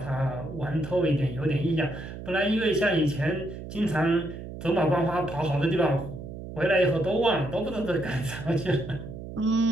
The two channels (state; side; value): noise; right; hum, 10 dB below the sound